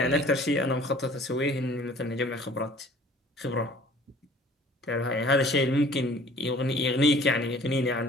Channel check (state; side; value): normal; both; correlation 0.51